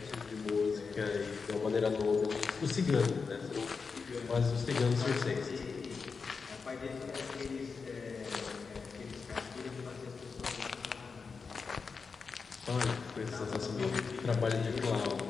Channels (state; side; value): quieter; right; 5.0 dB